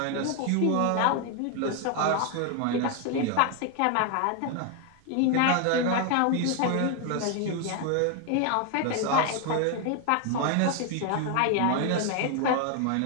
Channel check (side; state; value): both; different; correlation 0.01